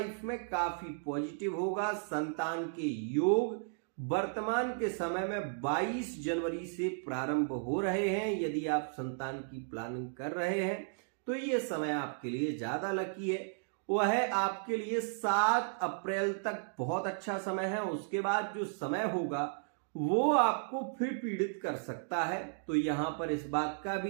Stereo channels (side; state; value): left; silent; digital silence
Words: में काफी पॉजिटिव होगा। संतान के योग वर्तमान के समय में 22 जनवरी से प्रारंभ हो रहे हैं। यदि आप संतान की प्लानिंग कर रहे हैं तो ये समय आपके लिए ज्यादा लकी है। वह आपके लिए 7 अप्रैल तक बहुत अच्छा समय है। उसके बाद जो समय होगा वो आपको फिर पीड़ित कर सकता है। तो यहां पर इस बात का